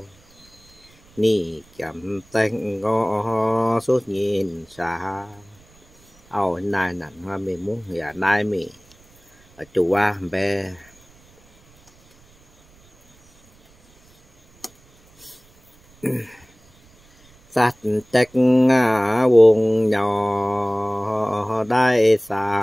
ni chậm tay ngó suốt nhìn xa ao này nặng hoa mình muốn nhà nay mình ở chủ qua bé sát trách vùng nhỏ đại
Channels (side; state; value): right; noise; rumble, 29 dB below the sound